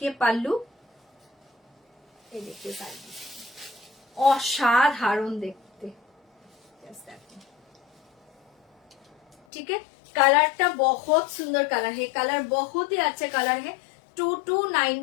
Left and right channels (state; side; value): drops out; right; at 9.3 s